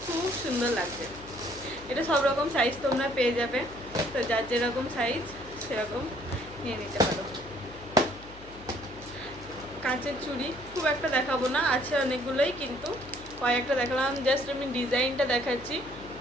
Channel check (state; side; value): noise; left; hum, 18 dB below the sound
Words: খুব সুন্দর লাগবে। এটা সব রকম সাইজ তোমরা পেয়ে যাবে, তো যার যেরকম সাইজ সেরকম নিয়ে নিতে পারো। কাঁচের চুড়ি খুব একটা দেখাবো না, আছে অনেকগুলোই, কিন্তু কয়েকটা দেখালাম, জাস্ট আমি ডিজাইনটা দেখাচ্ছি,